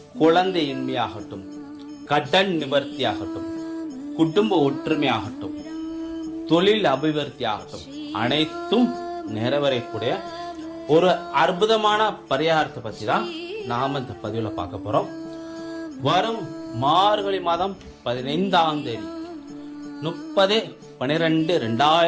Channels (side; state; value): both; identical; correlation 1.00